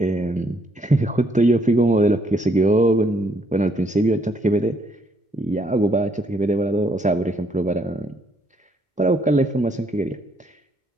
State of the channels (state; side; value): normal; both; correlation 0.69